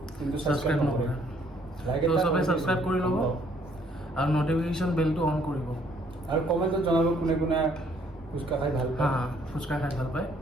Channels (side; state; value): both; normal; correlation 0.64